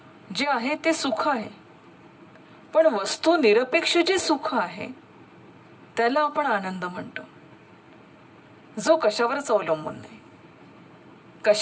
जे आहे ते सुख आहे, पण वस्तू निरपेक्ष जे सुख आहे त्याला आपण आनंद म्हणतो. जो कशावरच अवलंबून नाही,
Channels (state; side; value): identical; both; correlation 1.00